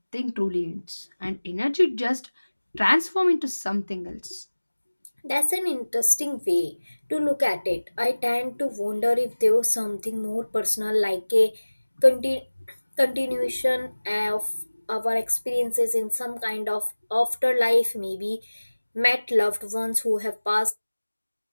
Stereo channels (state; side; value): inverted; both; correlation -1.00